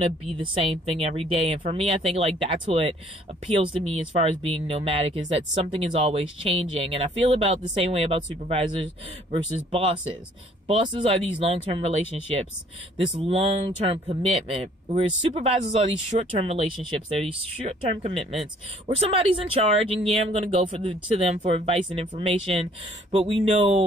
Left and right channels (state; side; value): normal; both; correlation 0.59